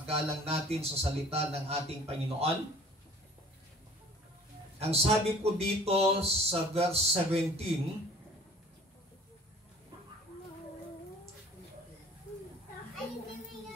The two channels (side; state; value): both; normal; correlation 0.49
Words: natin sa salita ng ating Panginoon. Ang sabi po dito sa verse 17,